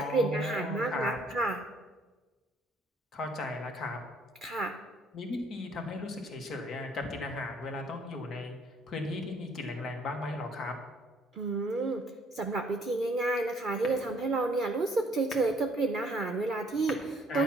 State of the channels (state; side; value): normal; both; correlation 0.62